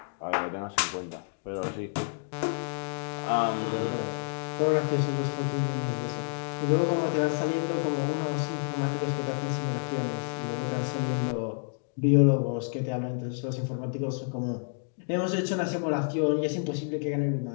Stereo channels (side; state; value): right; silent; digital silence